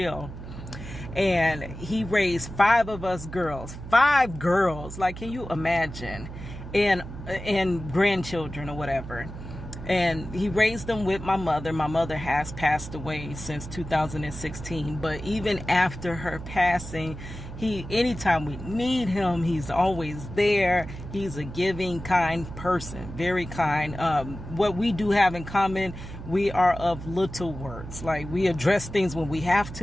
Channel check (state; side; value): noise; right; hum, 11 dB below the sound